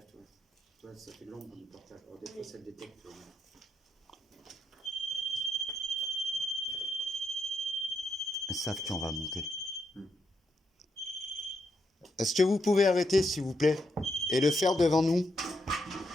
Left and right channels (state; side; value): normal; both; correlation 0.81